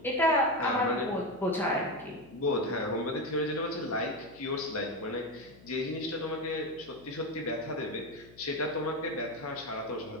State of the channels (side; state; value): left; noise; hum, 22 dB below the sound